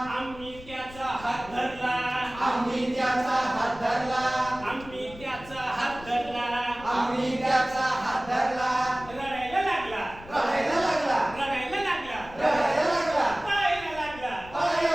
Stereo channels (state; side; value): noise; left; rumble, 17 dB below the sound